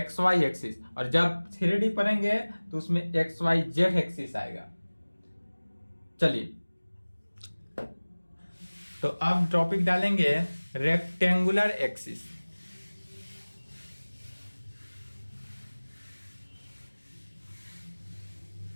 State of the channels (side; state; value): both; inverted; correlation -1.00